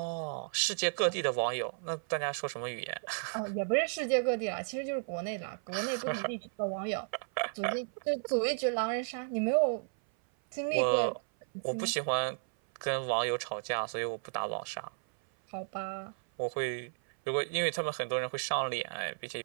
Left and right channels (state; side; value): silent; left; 55 dB below the other